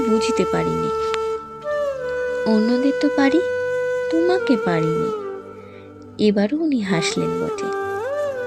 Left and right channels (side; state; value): both; identical; correlation 1.00